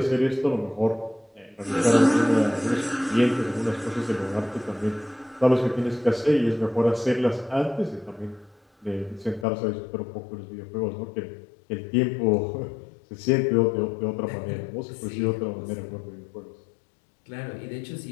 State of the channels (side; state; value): right; drops out; at 9.5 s